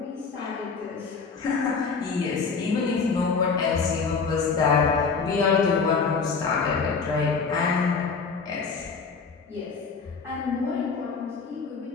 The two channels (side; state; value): right; quieter; 5.1 dB